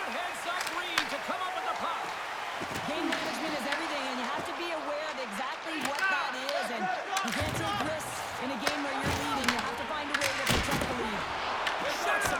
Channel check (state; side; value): identical; both; correlation 1.00